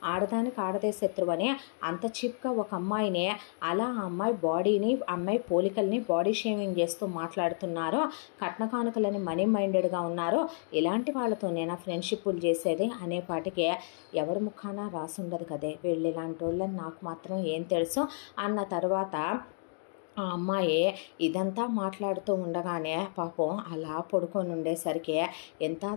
ఆడదానికి ఆడదే శత్రువు అని అంత చీప్గా ఒక అమ్మాయిని అలా ఆ అమ్మాయి బాడీని అమ్మాయి పోలికల్ని బాడీ షేమింగ్ చేస్తూ మాట్లాడుతున్నారు, కట్న కానుకలని మనీ మైండెడ్గా ఉన్నారు, ఇలాంటి వాళ్ళతో నేను ఫ్రెండ్షిప్లు చేసేది అనేపాటికి ఎవరి ముఖాన రాసుండదు కదే, వీళ్ళు ఇలాంటి వాళ్ళని నాకు మాత్రం ఏం తెలుసు అన్న తర్వాత ఆ అమ్మాయి ఇదంతా మాట్లాడుతూ ఉండగానే పాపం అలా పడుకొని ఉండేసరికి ఎంత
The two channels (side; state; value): right; silent; digital silence